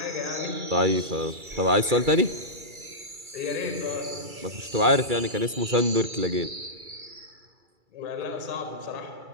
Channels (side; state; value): left; late; 2.3 ms